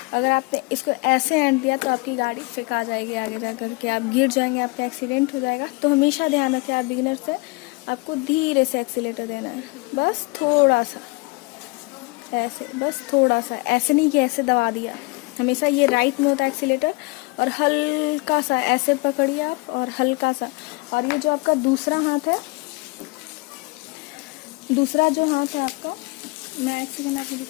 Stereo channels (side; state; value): right; quieter; 26.2 dB